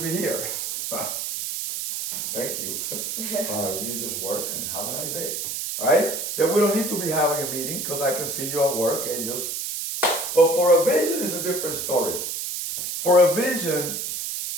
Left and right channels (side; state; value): right; noise; hiss, 4 dB below the sound